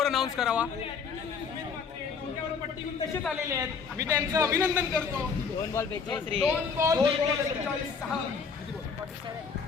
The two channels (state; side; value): quieter; right; 5.7 dB